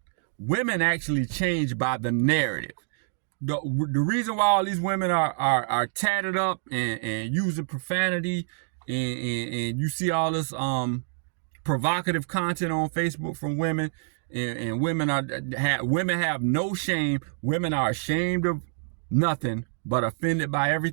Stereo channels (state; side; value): silent; left; digital silence